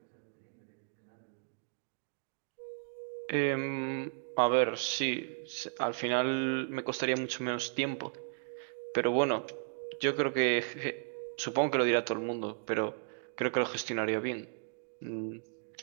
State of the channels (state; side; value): silent; left; digital silence